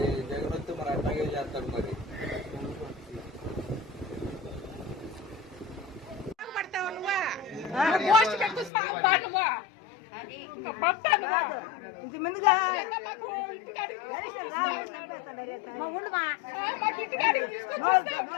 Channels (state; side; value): drops out; right; at 8.7 s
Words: జగన్ వస్తే మరి అట్లాగే చేస్తాడు. మరి ఇంతమందిగా